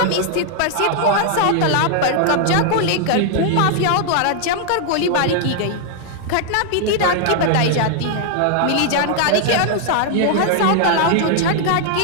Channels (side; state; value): both; different; correlation 0.00